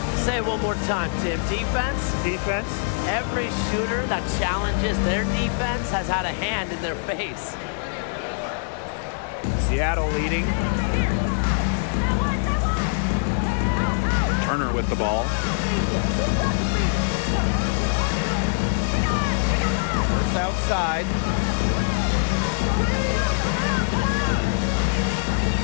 Say it one more time, Tim. Defense? Defense. Every shooter that challenges their defense has had a hand in their face. Seattle leading. Turner with the ball. First outside.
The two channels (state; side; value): silent; right; digital silence